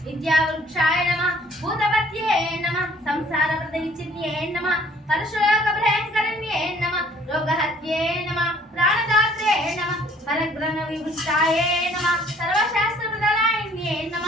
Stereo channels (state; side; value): normal; both; correlation 0.58